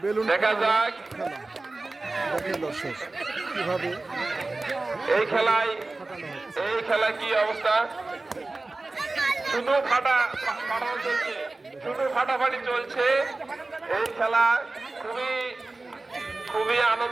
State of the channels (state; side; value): quieter; left; 3.2 dB